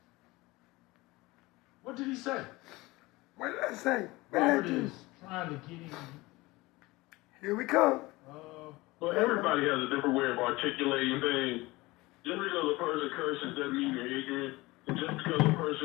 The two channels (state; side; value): quieter; right; 21.2 dB